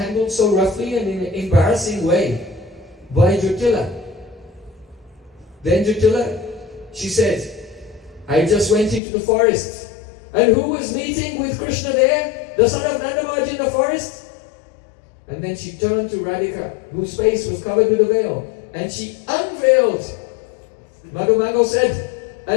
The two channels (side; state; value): right; drops out; at 9.0 s